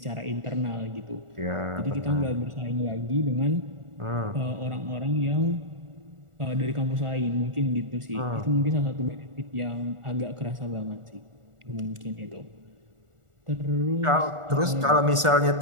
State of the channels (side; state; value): left; late; 1.4 ms